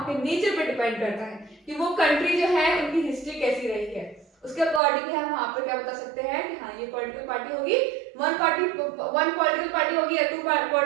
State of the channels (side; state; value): left; drops out; at 4.8 s